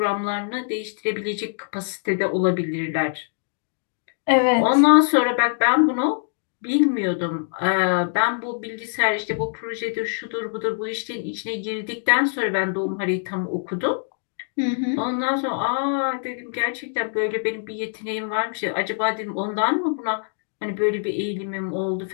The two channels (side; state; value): right; silent; digital silence